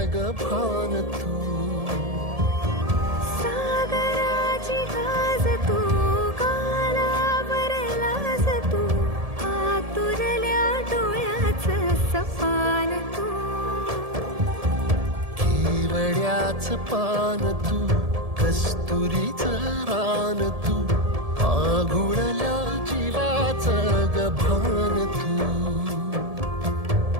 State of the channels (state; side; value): late; left; 1.7 ms